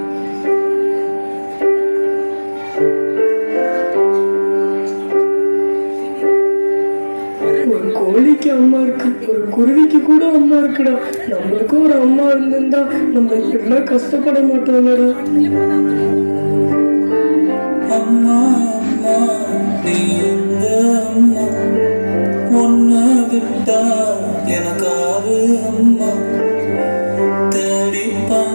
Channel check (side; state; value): both; inverted; correlation -1.00